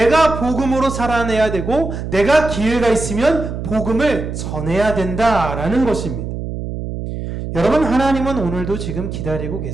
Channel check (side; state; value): right; noise; hum, 6 dB below the sound